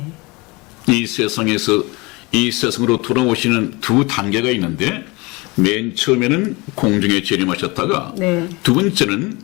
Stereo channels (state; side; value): quieter; right; 25.4 dB